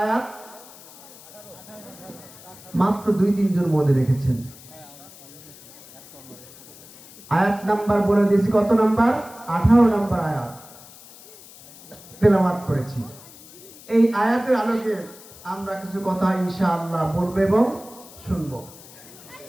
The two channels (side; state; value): left; noise; hiss, 20 dB below the sound